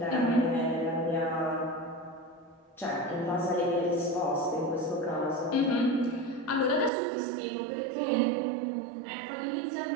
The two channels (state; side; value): drops out; left; at 6.9 s